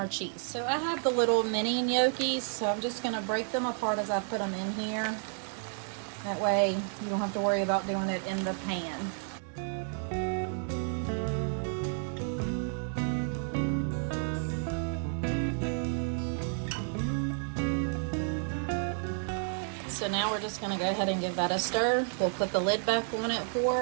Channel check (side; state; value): left; silent; 57 dB below the other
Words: cheese. So I have the little mini gnocchis, so I'm just gonna break them apart as I put them in here. That way you don't have to worry about doing it in the pan. So now we're just gonna go ahead and give that a stir. We'll put the lid back on it